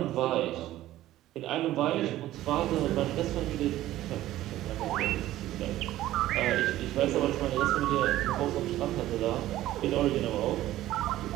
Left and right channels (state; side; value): quieter; left; 14.6 dB